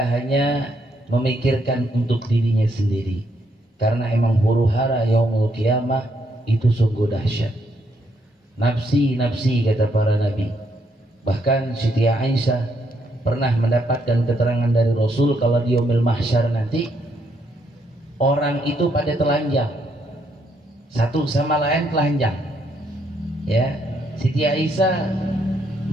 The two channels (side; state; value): both; normal; correlation 0.74